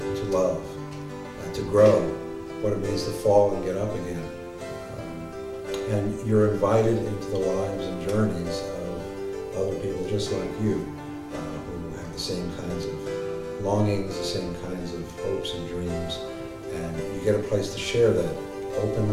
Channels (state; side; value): identical; both; correlation 1.00